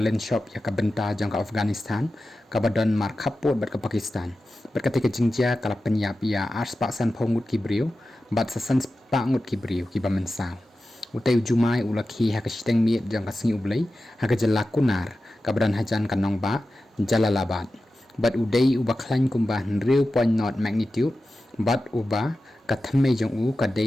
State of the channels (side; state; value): both; normal; correlation 0.93